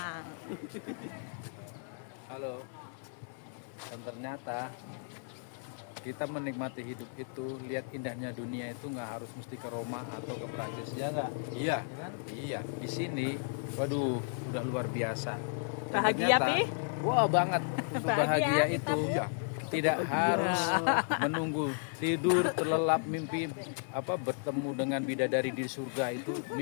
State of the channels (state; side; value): silent; right; digital silence